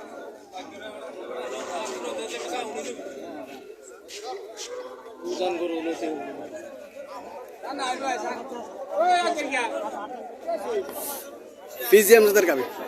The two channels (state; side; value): identical; both; correlation 1.00